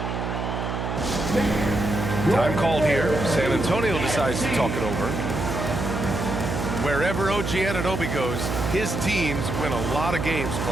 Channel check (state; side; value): noise; right; hum, 3 dB below the sound